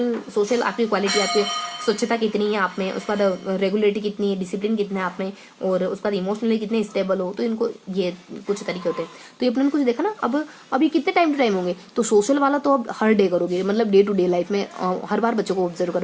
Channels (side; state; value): both; identical; correlation 1.00